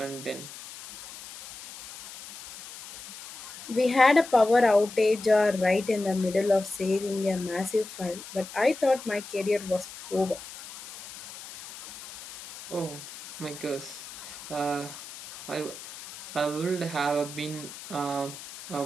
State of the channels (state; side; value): noise; left; hiss, 13 dB below the sound